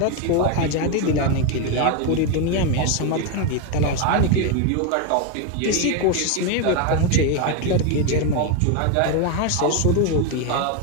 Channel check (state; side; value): different; both; correlation 0.02